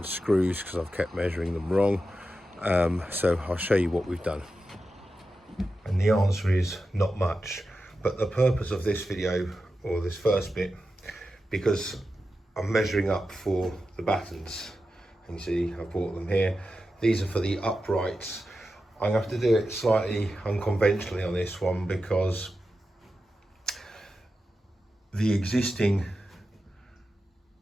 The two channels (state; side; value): normal; both; correlation 0.91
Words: screws because I've kept measuring them wrong. So I'll show you what we've done. And the answer is not much. But the purpose of this video, or this first bit, because I'm measuring up for the battens. And you see I bought them here. These are for the uprights. I'm going to have to do it slightly unconventionally on this one because the existing